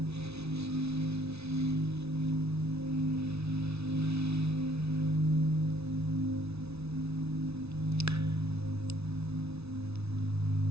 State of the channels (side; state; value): left; late; 0.80 ms